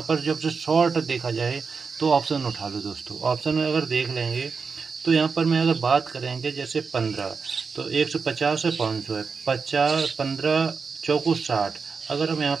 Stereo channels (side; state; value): left; quieter; 5.2 dB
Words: पर जब से शॉर्ट देखा जाए तो ऑप्शन उठा लो दोस्तों। ऑप्शन में अगर देख लेंगे तो यहाँ पर मैं अगर बात करेंगे जैसे 15, तो 150 है, 500 है, 50, 15 चौको 60। अगर हम यहाँ